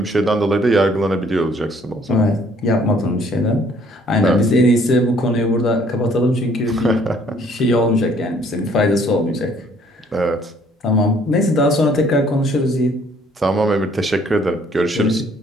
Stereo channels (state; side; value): normal; both; correlation 0.61